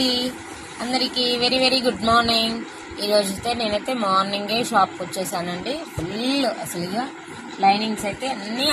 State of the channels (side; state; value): both; identical; correlation 1.00